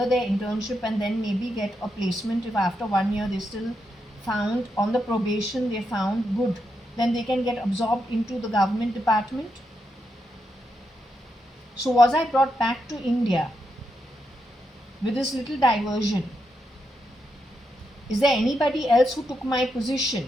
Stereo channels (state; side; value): normal; both; correlation 0.83